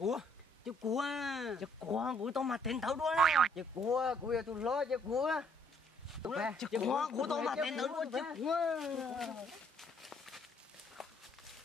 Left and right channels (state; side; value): normal; both; correlation 0.65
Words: Chiếc cua của tao mà tên thấu đuôi nè. Chiếc cua giờ tôi lo chiếc cua. Chiếc cua của tao mà tên thấu đuôi chiếc cua.